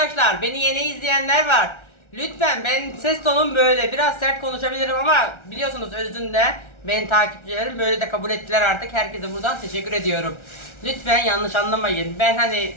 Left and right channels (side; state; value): right; late; 1.3 ms